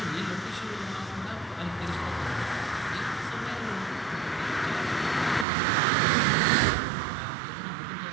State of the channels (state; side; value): drops out; left; at 5.5 s